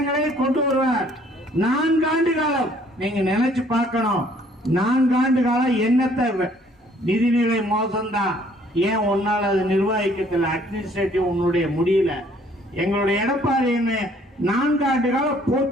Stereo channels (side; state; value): both; normal; correlation 0.60